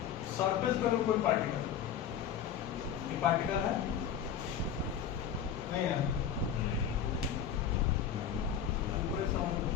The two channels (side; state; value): right; quieter; 8.4 dB